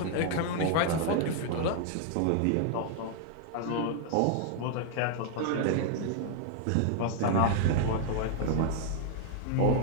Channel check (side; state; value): both; different; correlation 0.00